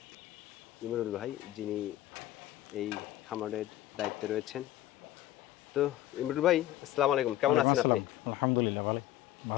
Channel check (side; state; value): right; quieter; 14.1 dB